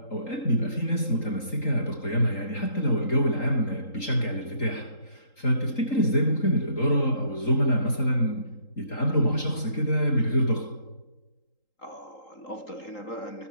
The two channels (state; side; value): late; right; 3.8 ms